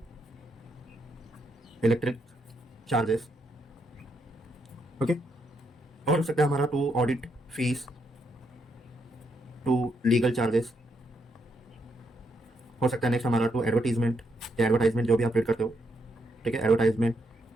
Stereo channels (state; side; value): normal; both; correlation 0.78